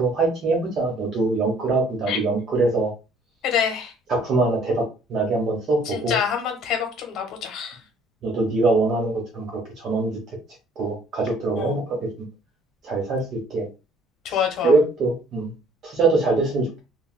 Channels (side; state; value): both; normal; correlation 0.58